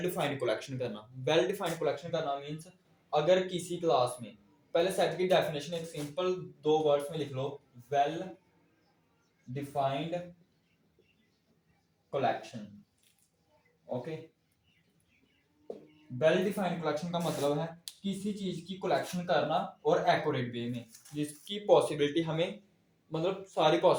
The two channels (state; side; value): identical; both; correlation 1.00